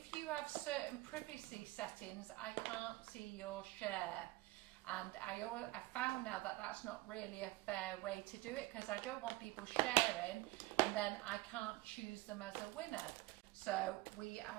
you have certain privacy settings, I can't see your share. And I found now that that's not really a fair way to do it, because I don't want people sharing and then I can't choose them as a winner. So we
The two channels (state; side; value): quieter; left; 20.0 dB